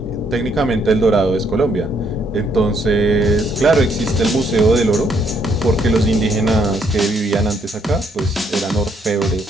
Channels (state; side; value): normal; both; correlation 0.71